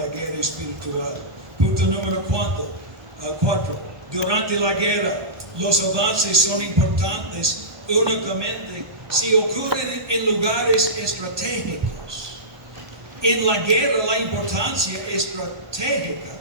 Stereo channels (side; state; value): left; late; 1.2 ms